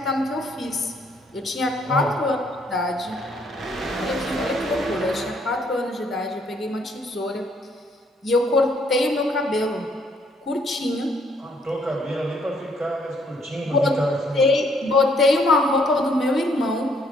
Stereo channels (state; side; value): normal; both; correlation 0.67